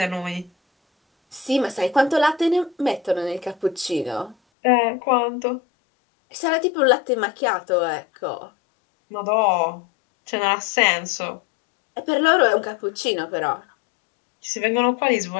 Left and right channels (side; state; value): right; drops out; at 4.4 s